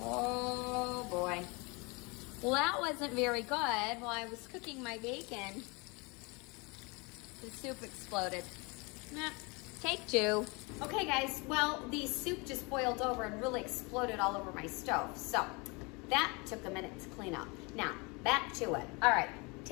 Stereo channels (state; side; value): quieter; right; 28.7 dB